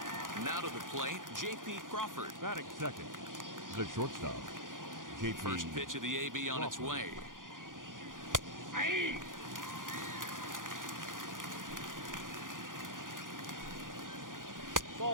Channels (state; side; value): late; left; 0.89 ms